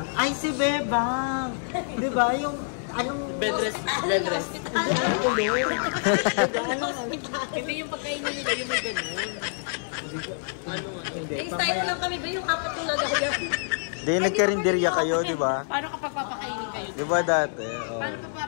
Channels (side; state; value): right; silent; 57 dB below the other